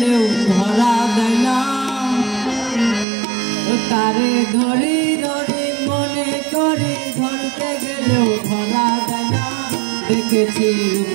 ধরা দেয় না। তারে ধরি ধরি মনে করি ধরতে গেলেও ধরা দেয় না। দেখেছি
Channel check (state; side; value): drops out; left; at 3.1 s